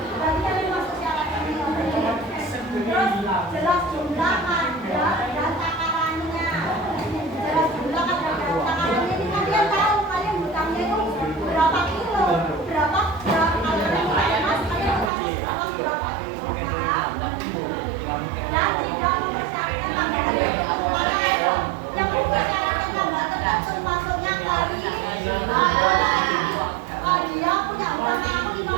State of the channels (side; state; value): left; drops out; at 15.1 s